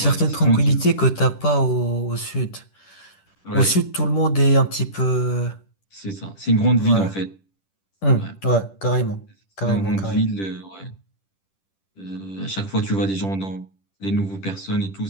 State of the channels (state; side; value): late; right; 10 ms